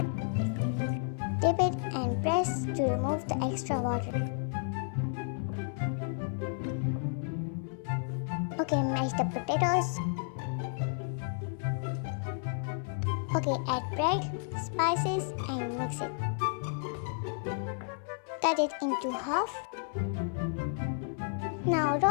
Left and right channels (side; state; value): right; silent; 56 dB below the other